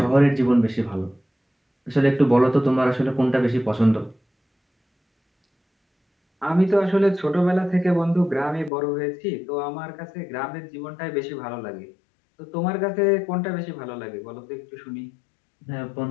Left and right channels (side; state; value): right; drops out; at 8.7 s